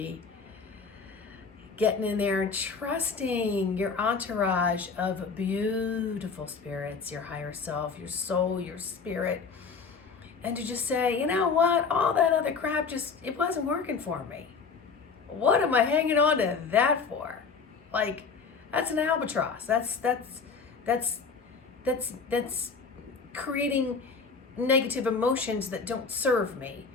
getting in there and trusting your entourage of beautiful spirits, your higher self, your soul, your spirit, and to just say, you know what, all that other crap it wasn't working for me. What am I hanging on to that for? Like, that's an albatross. That's creating negative emotions that don't serve me.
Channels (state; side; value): quieter; right; 5.1 dB